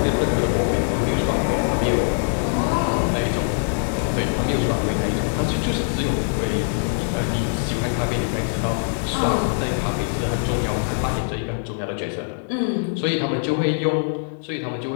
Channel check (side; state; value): right; silent; digital silence